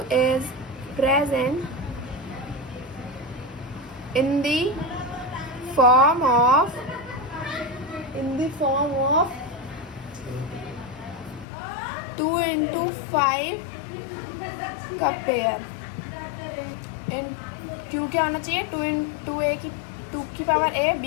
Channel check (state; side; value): drops out; right; at 11.5 s